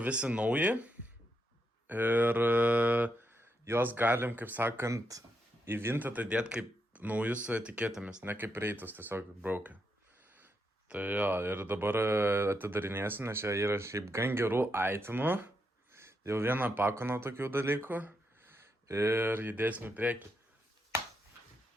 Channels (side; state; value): both; normal; correlation 0.82